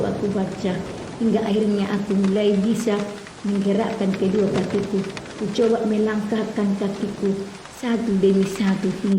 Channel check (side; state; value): both; identical; correlation 1.00